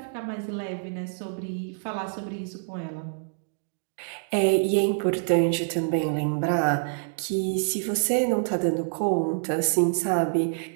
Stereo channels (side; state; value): left; silent; digital silence